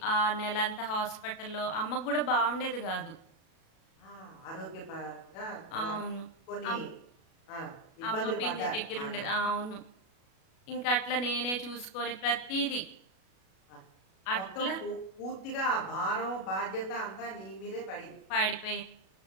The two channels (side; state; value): right; late; 37 ms